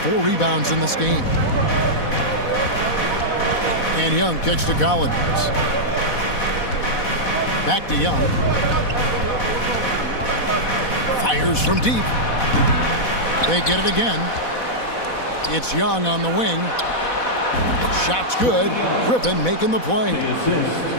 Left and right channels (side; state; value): right; late; 4.1 ms